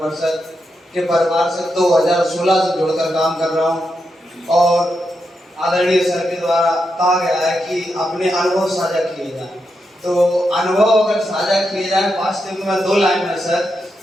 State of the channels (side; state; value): both; normal; correlation 0.85